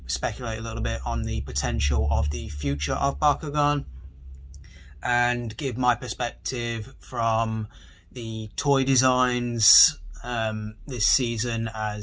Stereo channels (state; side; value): identical; both; correlation 1.00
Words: speculate a little bit on the potential of the future of Bakugan, and give my perspective from the toy designs this season,